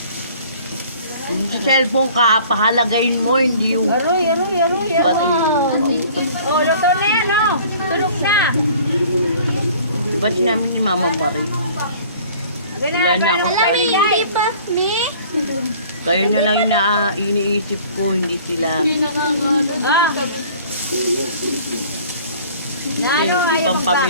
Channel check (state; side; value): inverted; both; correlation -0.50